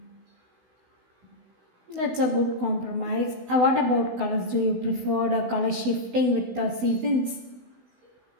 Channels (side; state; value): left; late; 16 ms